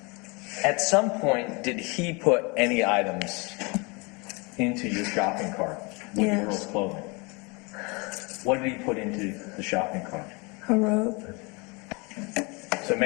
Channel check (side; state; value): right; quieter; 28.7 dB